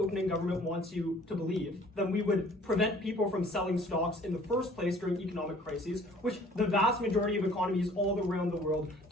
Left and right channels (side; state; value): both; normal; correlation 0.54